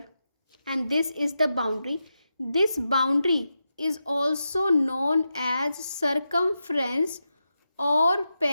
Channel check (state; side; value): inverted; both; correlation -0.89